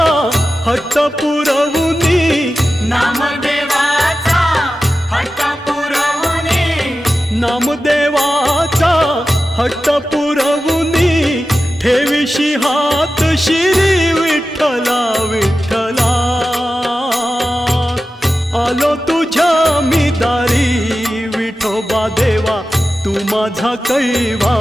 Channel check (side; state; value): both; normal; correlation 0.93